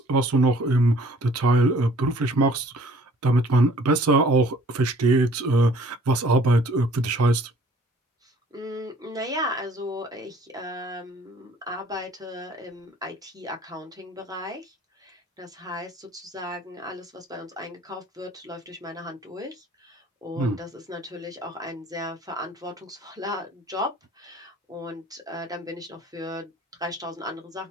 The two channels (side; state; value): both; normal; correlation 0.54